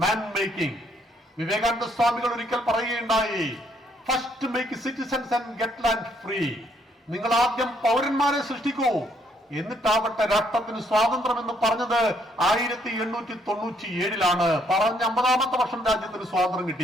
മാൻ മേക്കിംഗ്. വിവേകാനന്ദ സ്വാമികൾ ഒരിക്കൽ പറയുകയുണ്ടായി, first make citizens and get land free. നിങ്ങൾ ആദ്യം പൗരന്മാരെ സൃഷ്ടിക്കൂ, എന്നിട്ടാവട്ടെ രാഷ്ട്രത്തിന് സ്വാതന്ത്ര്യം എന്ന് പറഞ്ഞത് 1897 പറഞ്ഞ 50ാമത്തെ വർഷം രാജ്യത്തിന് സ്വാതന്ത്ര്യം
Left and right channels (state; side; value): normal; both; correlation 0.69